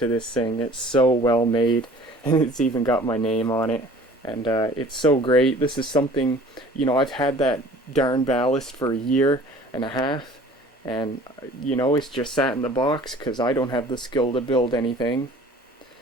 this thing. It's so well made, and it's even got my name on it. And it's so great. This is something, you know, I've had that darn ballast for a year and a half. And, you know, it's just sat in the box because I don't have the skill to build anything.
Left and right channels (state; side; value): normal; both; correlation 0.48